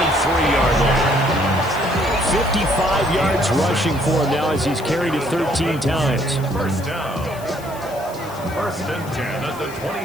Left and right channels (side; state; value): left; noise; hiss, 19 dB below the sound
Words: line. 55 yards rushing for him now as he's carried it 13 times. First down. 1st and 10 at the